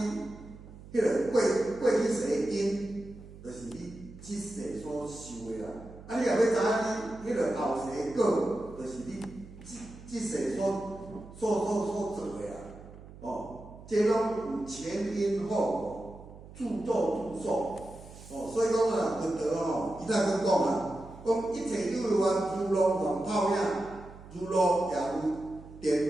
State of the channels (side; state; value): right; noise; hum, 17 dB below the sound